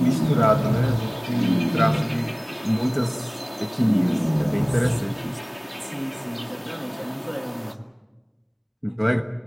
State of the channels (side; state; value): both; identical; correlation 1.00